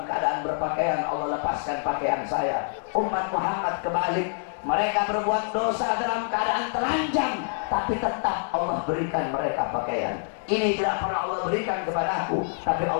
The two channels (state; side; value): silent; right; digital silence